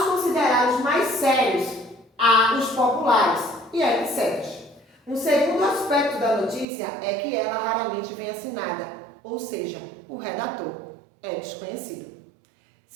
considerados mais sérios, há os populares e etc. Um segundo aspecto da notícia é que ela raramente vem assinada, ou seja, o redator é desconhecido.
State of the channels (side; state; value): left; drops out; at 6.7 s